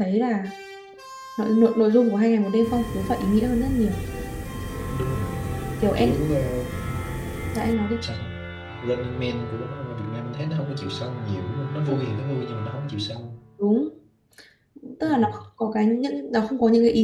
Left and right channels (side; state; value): both; identical; correlation 1.00